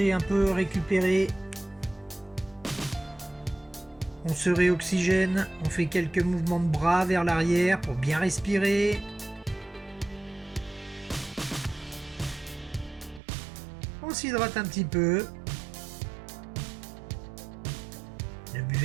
un peu, récupérer. On se réoxygène, on fait quelques mouvements de bras vers l'arrière pour bien respirer. On s'hydrate un petit peu. Ne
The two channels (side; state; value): left; drops out; at 13.2 s